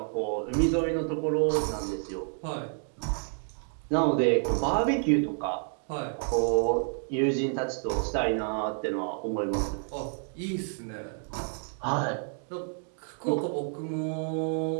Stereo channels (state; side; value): silent; left; 58 dB below the other